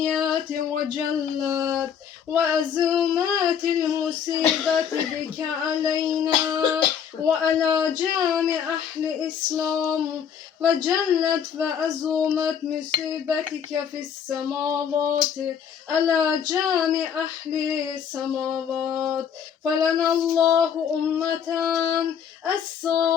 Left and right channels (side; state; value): right; quieter; 8.0 dB